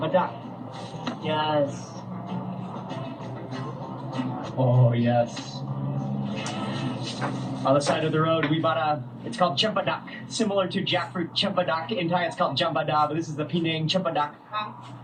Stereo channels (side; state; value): both; identical; correlation 1.00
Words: Yes. Oh, yes. On the side of the road, we bought it's called Cempedak, similar to jackfruit Cempedak. In Thai, it's called Jambada, but this is the Penang Cempedak.